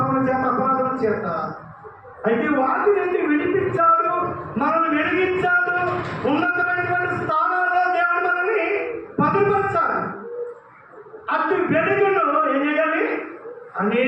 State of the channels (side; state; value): both; identical; correlation 1.00